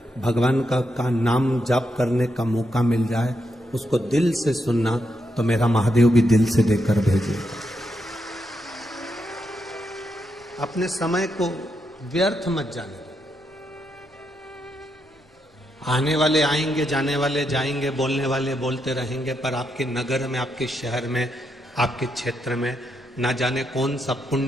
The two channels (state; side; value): normal; both; correlation 0.81